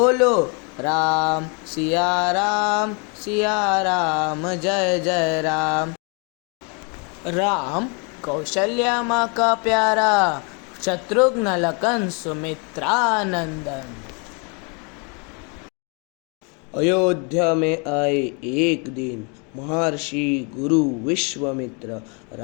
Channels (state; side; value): quieter; right; 34.6 dB